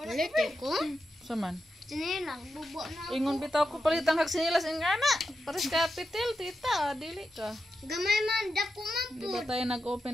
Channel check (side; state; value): both; normal; correlation 0.88